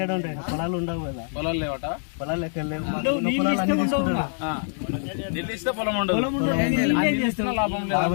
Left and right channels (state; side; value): silent; right; 56 dB below the other